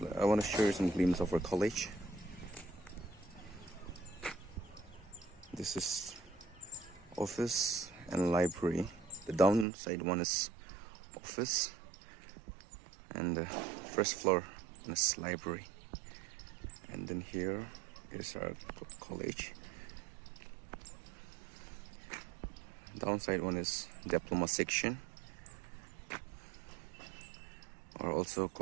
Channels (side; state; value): left; drops out; at 9.7 s